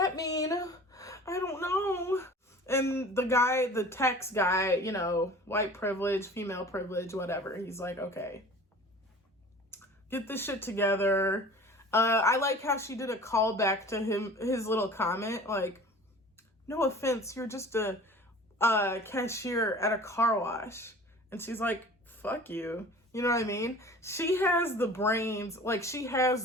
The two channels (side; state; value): both; normal; correlation 0.43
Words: mean? I don't know. And the guy, the tax guy, you know, white privilege, female privilege, whatever. He's like, okay, get this shit together. I like how she did a callback to his little comment, like, no offense, you're just a cashier at a car wash. And she's like, fuck you. You know what I mean? She has the brains, like she